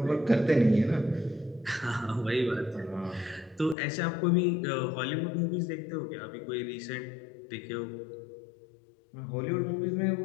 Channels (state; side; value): drops out; right; at 3.8 s